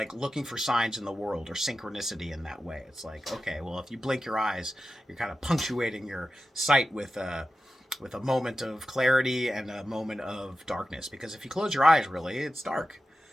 looking for signs in the world, or synchronicity in that way. It's like, okay, well, if you blink your eyes, you're kind of punctuating your sight with a moment of clarity and a moment of darkness. Because if you close your eyes, really, it's dark.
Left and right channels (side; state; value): both; normal; correlation 0.92